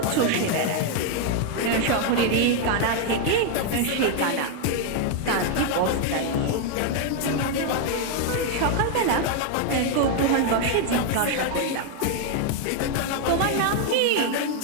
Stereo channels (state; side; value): different; both; correlation 0.00